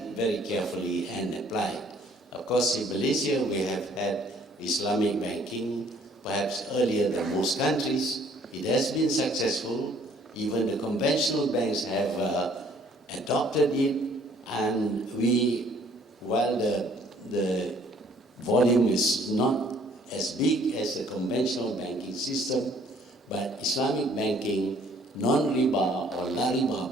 very carefully and applied. Of course, in Malaysia we have had Islamic banking, perhaps earlier than most countries. It has been successful. Even the conventional banks have adopted it, and while the volume is not as big as the conventional banking system, but Islamic banking, non-riba or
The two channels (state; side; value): normal; both; correlation 0.60